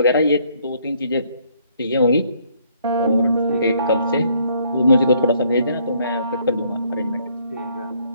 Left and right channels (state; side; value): inverted; both; correlation -0.66